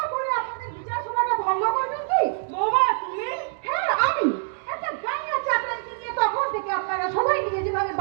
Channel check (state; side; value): silent; left; digital silence